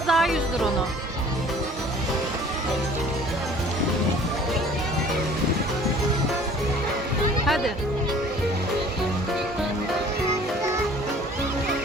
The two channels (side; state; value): both; normal; correlation 0.50